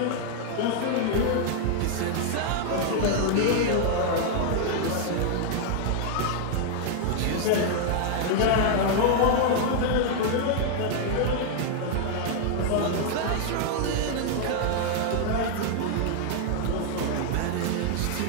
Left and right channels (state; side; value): different; both; correlation 0.00